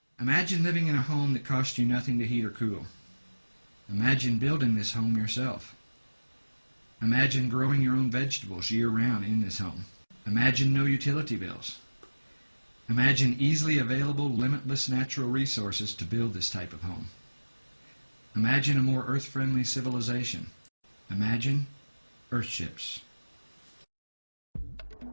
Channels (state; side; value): inverted; both; correlation -1.00